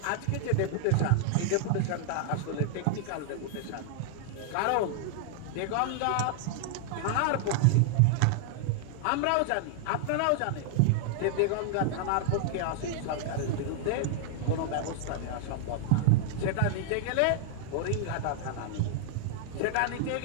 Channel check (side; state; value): both; different; correlation -0.01